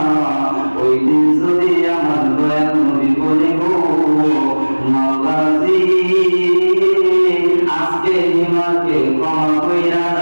ওই দিন যদি আমার দয়াল নবী বলে গো মাওলাজি আজকে হিমাকে ক্ষমা কইরা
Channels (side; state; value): both; inverted; correlation -1.00